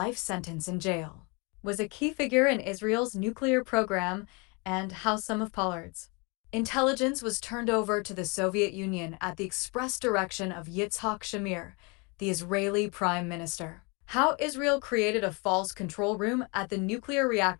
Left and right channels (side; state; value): right; quieter; 30.6 dB